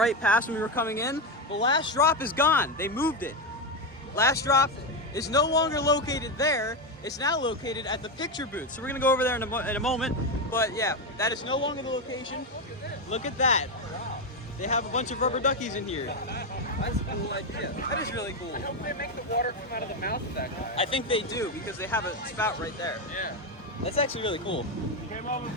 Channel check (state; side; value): normal; both; correlation 0.10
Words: past when we were coming in, the last drop is gone. They moved it. Last drop is no longer located there. It's now located at the picture booth. So we're gonna go over there in a moment. But yeah, that is no longer the location. Look at that. They have a bunch of rubber duckies in here. That's a cool idea. That is really cool. I hope they make the water come out of the mouth of that guy. I think they do because they have a spout right there. Yeah. That's actually really cool. Came over